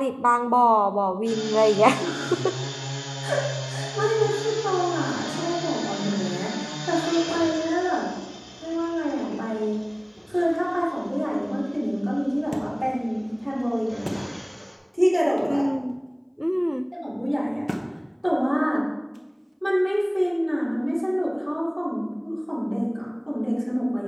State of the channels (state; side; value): identical; both; correlation 1.00